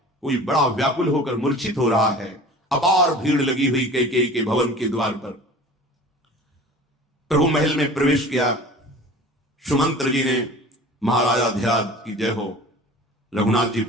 कोई बड़ा व्याकुल होकर मूर्छित हो रहा है। अपार भीड़ लगी हुई कैकेयी के भवन के द्वार पर। प्रभु महल में प्रवेश किया। सुमंत्र जी ने महाराजा ध्यान की जय हो, रघुनाथ जी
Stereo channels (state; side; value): normal; both; correlation 0.41